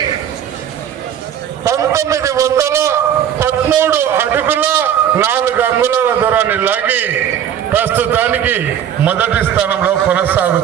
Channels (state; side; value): quieter; left; 9.5 dB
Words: 1913 అడుగుల 4 అంగుళాల దూరాన్ని లాగి ప్రస్తుతానికి మొదటి స్థానంలో